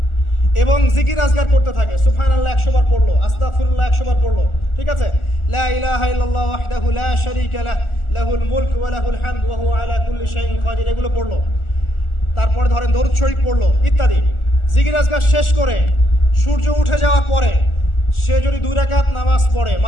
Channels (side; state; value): right; late; 1.4 ms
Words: এবং জিকির আজগার করতে থাকে, সুবহানাল্লাহ 100 বার পড়লো, আস্তাগফিরুল্লাহ 100 বার পড়লো, ঠিক আছে, লা ইলাহা ইল্লাল্লাহ ওয়াহদাহু লা শারীকা লাহ লাহুল মুলক ওয়া লাহুল হামদ ওয়া হুয়া আলা কুল্লি শাইইন কাদির, এগুলো পড়লো, তারপরে ধরেন দরুদ শরীফ পড়লো ইত্যাদি। জিকির আজগার শেষ করে সূর্য উঠে যাওয়ার পরে সে যদি 2 রাকাত নামাজ পড়ে,